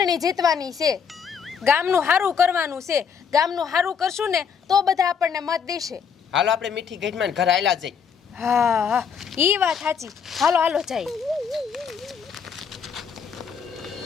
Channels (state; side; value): quieter; right; 6.8 dB